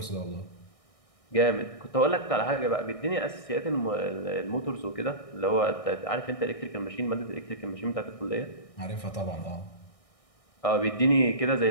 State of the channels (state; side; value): late; right; 1.6 ms